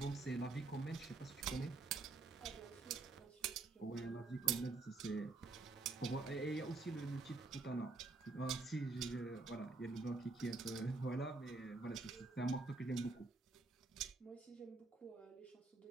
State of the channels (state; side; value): quieter; left; 3.7 dB